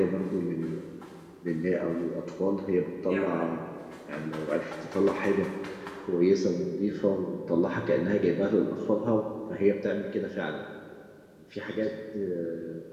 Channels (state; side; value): identical; both; correlation 1.00